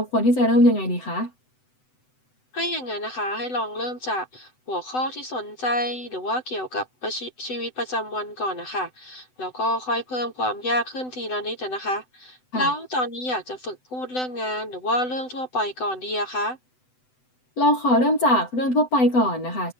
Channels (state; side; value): late; right; 7.9 ms